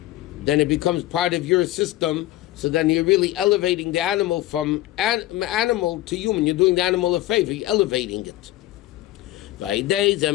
then it becomes part of your system, so then you're really elevating the animal from animal to human. You're doing the animal a favor, you're elevating it. And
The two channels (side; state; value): right; quieter; 15.7 dB